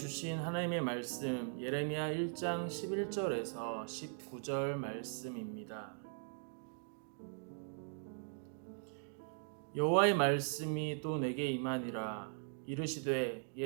하나님의 말씀 예레미야 1장 11절에서 19절 말씀입니다. 여호와의 말씀이 또 내게 임하니라. 이르시되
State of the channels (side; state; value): left; silent; digital silence